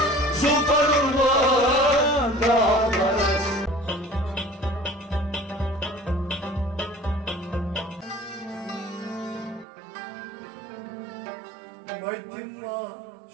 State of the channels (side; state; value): left; drops out; at 9.7 s